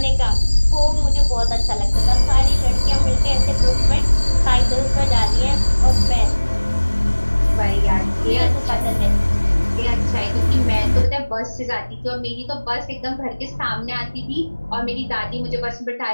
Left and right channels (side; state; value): both; inverted; correlation -1.00